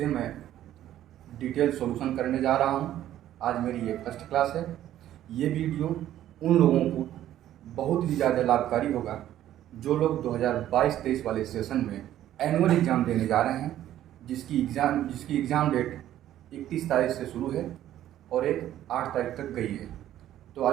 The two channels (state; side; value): quieter; left; 12.4 dB